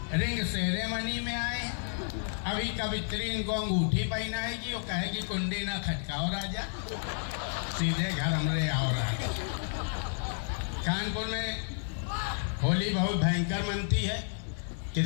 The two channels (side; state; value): right; silent; 57 dB below the other